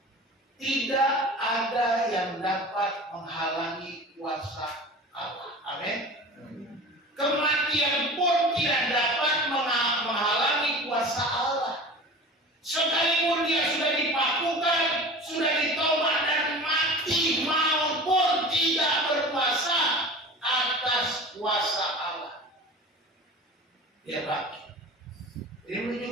Tidak ada yang dapat menghalangi kuasa Allah. Amin. Kematian pun tidak dapat menghalangi kuasa Allah. Sekalipun dia sudah dipakukan, sudah ditombak dan mati, maupun tidak berkuasa atas kuasa Allah. Dia bangkit. Ini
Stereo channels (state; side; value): normal; both; correlation 0.37